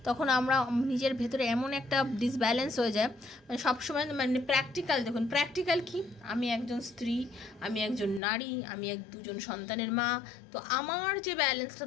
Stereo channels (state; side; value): drops out; right; at 8.2 s